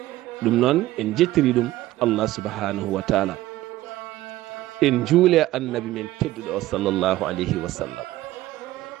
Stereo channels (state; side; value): quieter; left; 15.9 dB